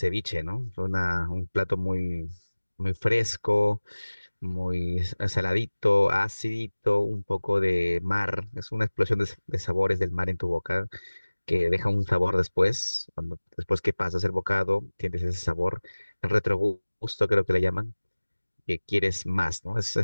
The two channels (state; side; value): inverted; both; correlation -1.00